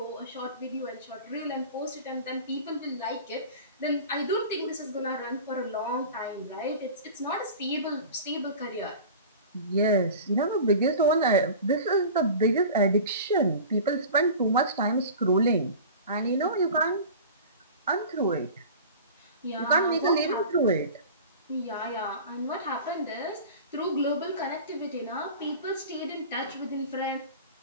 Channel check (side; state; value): both; inverted; correlation -0.37